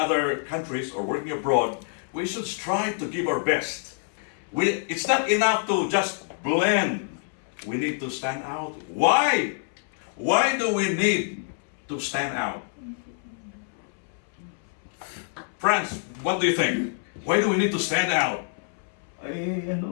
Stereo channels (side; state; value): right; silent; 61 dB below the other